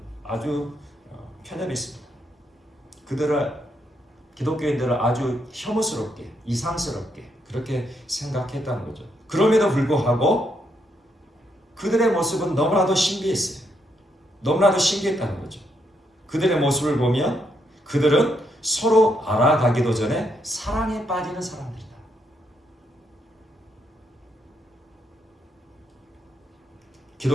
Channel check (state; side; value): normal; both; correlation 0.77